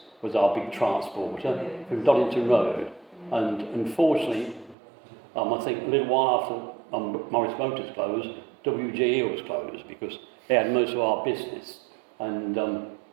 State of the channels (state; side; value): drops out; left; at 4.8 s